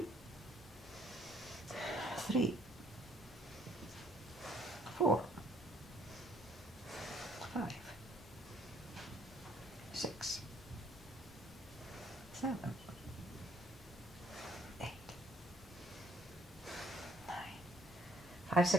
3, 4, 5, 6, 7, 8, 9. 5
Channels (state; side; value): normal; both; correlation 0.64